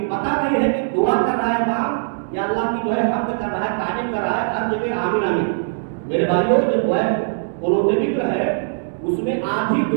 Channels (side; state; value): left; silent; 65 dB below the other